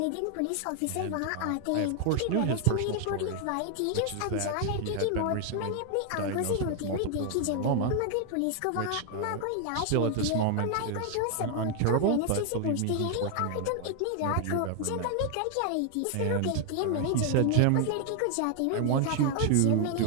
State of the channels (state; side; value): different; both; correlation 0.00